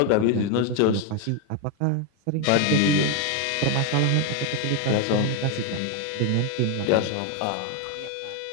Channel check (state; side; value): different; both; correlation 0.01